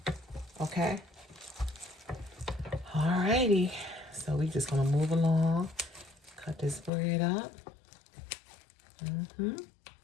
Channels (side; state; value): right; drops out; at 6.9 s